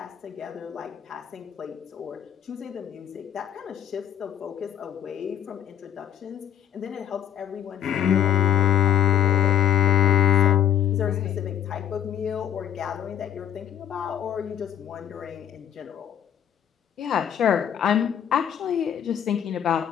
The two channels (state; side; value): quieter; right; 9.8 dB